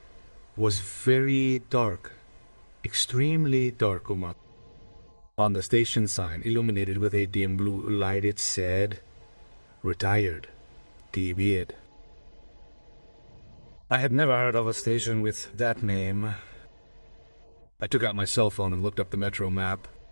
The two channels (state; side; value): inverted; both; correlation -1.00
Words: was very dark, extremely dark. On the station sign, illuminated with a dim blue light, it said, "Retired, TB'd." I had never heard of a station with that name. I took out my cell phone and looked up the metro map.